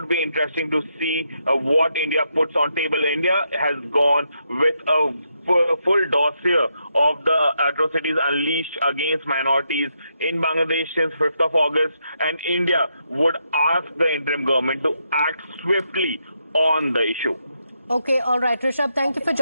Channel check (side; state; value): both; inverted; correlation -0.81